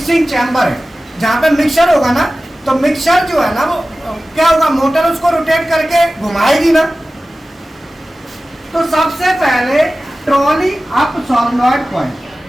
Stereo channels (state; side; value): normal; both; correlation 0.96